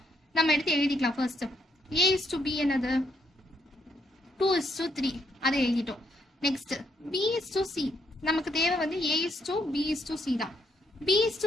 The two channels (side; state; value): both; normal; correlation 0.75